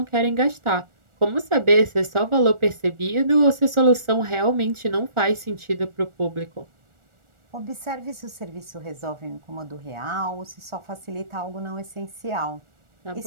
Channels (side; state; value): left; late; 1.4 ms